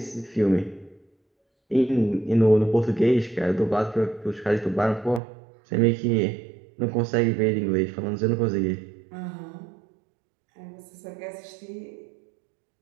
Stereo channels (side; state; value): left; drops out; at 5.2 s